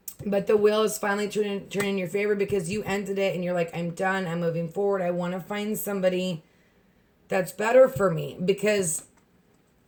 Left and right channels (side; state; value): both; identical; correlation 1.00